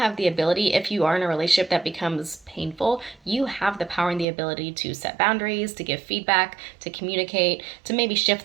the ability, if you are in a relationship that becomes painful, you have the power and the ability to set boundaries, to give feedback, to communicate, to maybe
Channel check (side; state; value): left; drops out; at 4.2 s